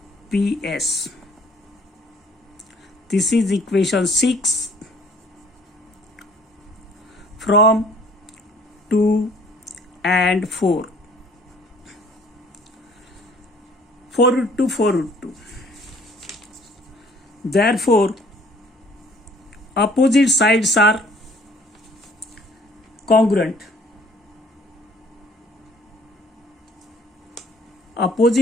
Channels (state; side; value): normal; both; correlation 0.57